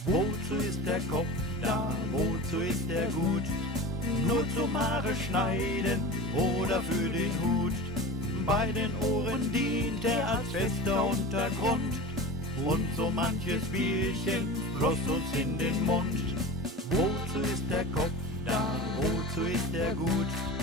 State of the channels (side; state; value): both; normal; correlation 0.33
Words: Wozu ist der Kopf da, wozu ist er gut? Nur zum Haare schneiden oder für den Hut. Bei den Ohren dient er als fester Untergrund. Und so manches Bierchen floss uns in den Mund. Wozu ist der Kopf da, wozu ist er gut?